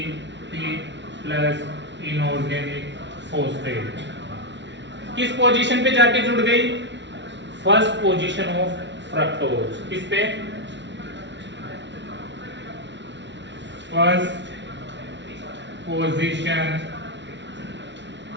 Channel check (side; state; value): left; late; 0.52 ms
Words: प्लस इनऑर्गेनिक फोस्फेट किस पोजीशन पे जाके जुड़ गई? First position of fructose. किस पे? First position